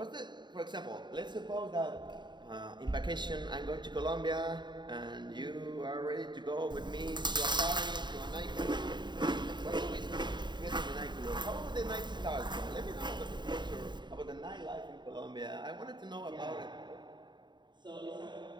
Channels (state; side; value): late; left; 0.22 ms